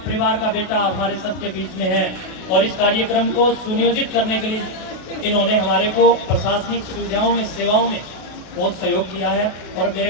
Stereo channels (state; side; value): late; right; 32 ms